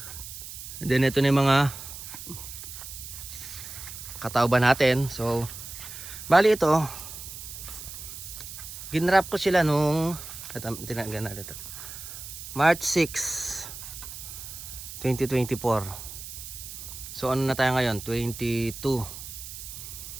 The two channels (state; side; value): noise; right; hiss, 11 dB below the sound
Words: And then ito na yung mga katawba natin. So, bali ito, ginrap ko sila nung tinagan natin ito. March 6, 2024. So ano na tayo ngayon? 22.